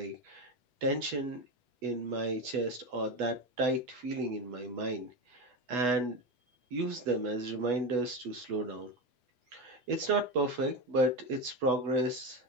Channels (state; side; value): late; left; 8.1 ms